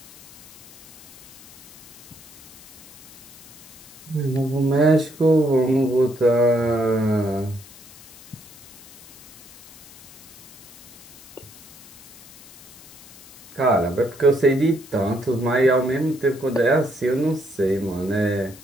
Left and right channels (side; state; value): left; noise; hiss, 20 dB below the sound